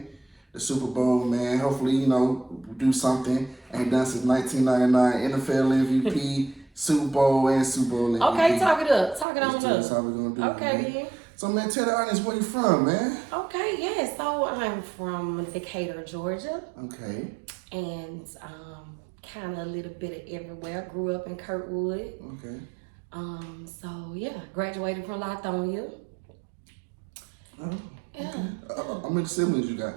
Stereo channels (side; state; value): left; drops out; at 9.2 s